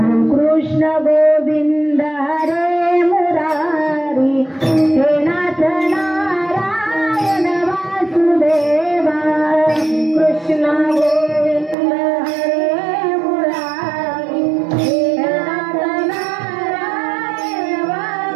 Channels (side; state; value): left; drops out; at 11.8 s